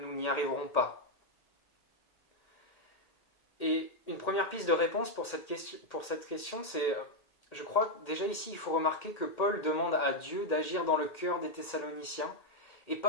n'y arriverons pas. Et une première piste de réponse pour cette question, c'est, je crois déjà ici, il faut remarquer que Paul demande à Dieu d'agir dans le cœur des Thessaloniciens et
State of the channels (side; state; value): right; late; 1.8 ms